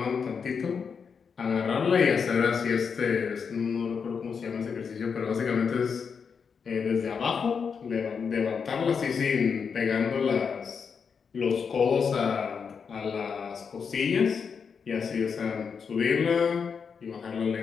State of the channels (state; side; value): quieter; right; 6.1 dB